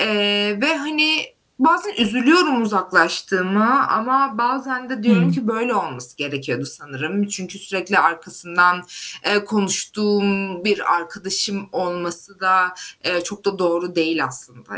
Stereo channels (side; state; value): both; identical; correlation 1.00